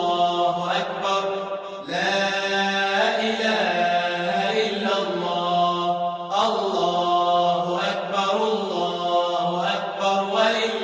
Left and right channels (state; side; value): identical; both; correlation 1.00